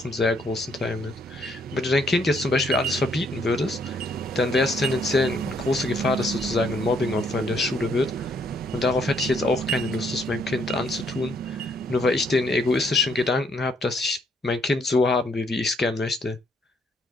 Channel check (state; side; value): normal; both; correlation 0.69